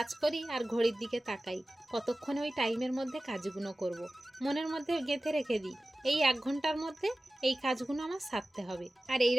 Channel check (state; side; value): normal; both; correlation 0.96